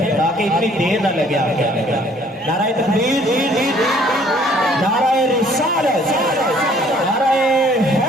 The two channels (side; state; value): both; normal; correlation 0.59